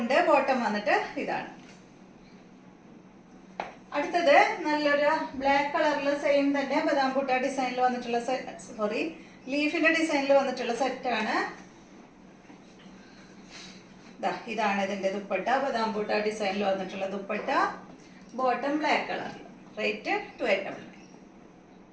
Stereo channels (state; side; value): identical; both; correlation 1.00